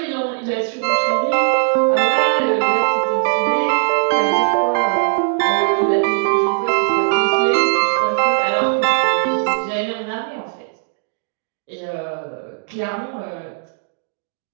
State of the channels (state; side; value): silent; left; digital silence